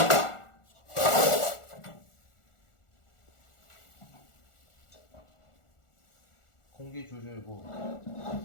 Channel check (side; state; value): right; late; 1.4 ms